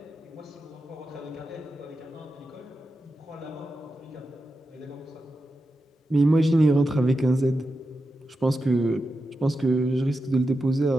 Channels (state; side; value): normal; both; correlation 0.90